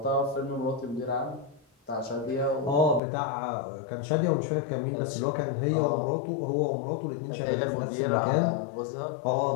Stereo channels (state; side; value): drops out; right; at 3.0 s